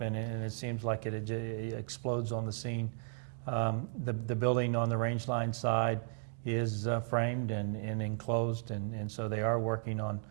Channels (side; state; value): left; silent; digital silence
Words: and it seems like it explodes on the scene. The building on the Range Line side is framed and enclosed, and so they are working on